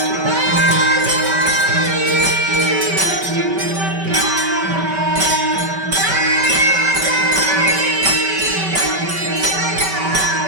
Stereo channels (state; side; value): late; left; 5.2 ms